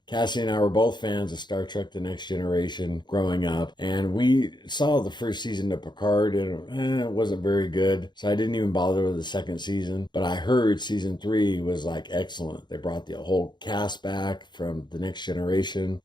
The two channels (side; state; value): right; late; 0.21 ms